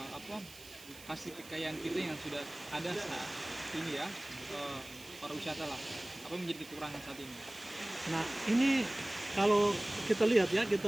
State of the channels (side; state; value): right; noise; hiss, 18 dB below the sound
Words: hasil kekayaan kita yang sudah ada saat ini, ya, pariwisata lah, apa yang menjadi kekurangan saat ini? Nah, ini kalau kita lihat, ya, kita